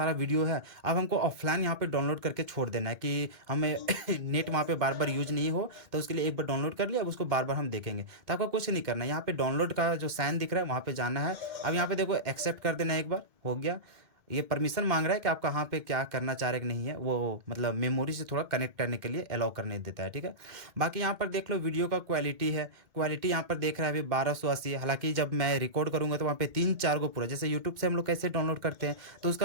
वीडियो है, अब हमको ऑफलाइन यहाँ पे डाउनलोड करके छोड़ देना है कि हमें नेट वहाँ पे बार बार यूज नहीं हो, तो उसके लिए एक बार डाउनलोड कर लिया, अब उसको बार बार हम देखेंगे। तो आपको कुछ नहीं करना है, यहाँ पे डाउनलोड का जो साइन दिख रहा है वहाँ पे जाना है। अब यहाँ पे देखो एक्सेप्ट कर देना है, एक बार हो गया। ये परमिशन मांग रहा है कि आप कहाँ पे क्या करना चाह रहे कि नहीं है, वो मतलब मेमोरी से थोड़ा कनेक्ट करने के लिए अलाउ करने देता है, ठीक है। बाकी यहाँ पर देख लो वीडियो का क्वालिटी है, क्वालिटी यहाँ पर देख रहा है अभी 1280 है। हालांकि जब मैं रिकॉर्ड करूँगा तो वहाँ पे 3-4 गो पूरा, जैसे यूट्यूब से हम लोग कैसे डाउनलोड करते हैं तो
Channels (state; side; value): late; left; 2.2 ms